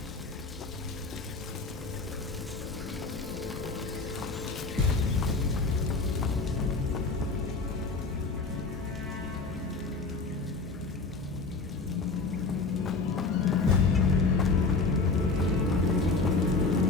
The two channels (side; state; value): right; quieter; 4.0 dB